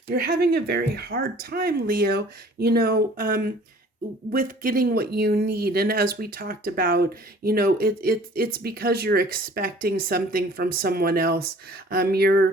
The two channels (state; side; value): normal; both; correlation 0.51